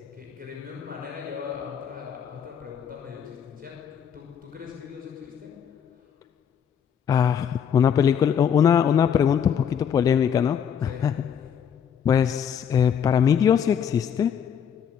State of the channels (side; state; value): right; quieter; 8.1 dB